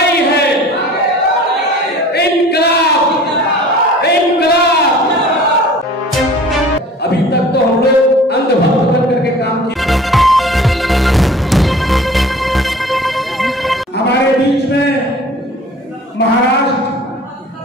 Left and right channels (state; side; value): normal; both; correlation 0.45